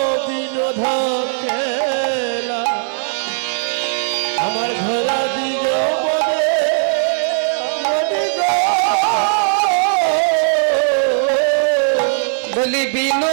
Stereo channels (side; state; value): left; silent; digital silence